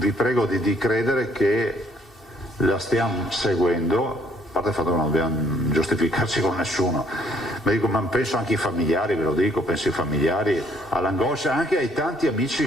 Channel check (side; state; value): both; normal; correlation 0.65